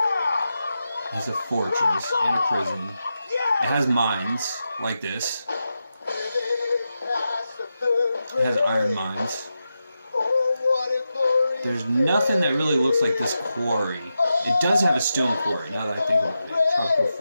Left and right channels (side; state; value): both; inverted; correlation -0.89